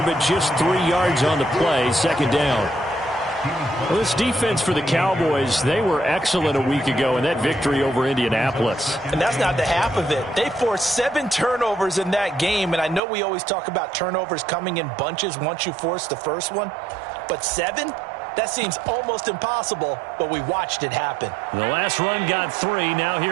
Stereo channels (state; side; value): drops out; left; at 13.0 s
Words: but just 3 yards on the play. Second down. Well, this defense for the Cowboys, they were excellent a week ago in that victory over Indianapolis. And that's not the half of it. They forced 7 turnovers in that game, and I know we always talk about turnovers coming in bunches once you force the first one, but 7? That seems almost impossible, but we watched it happen. The last run got 3. Now